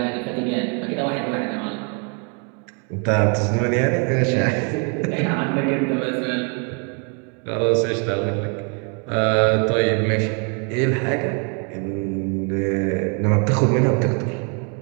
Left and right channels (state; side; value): quieter; left; 37.2 dB